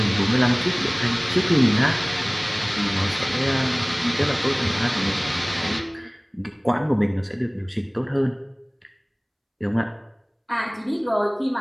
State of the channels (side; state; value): both; identical; correlation 1.00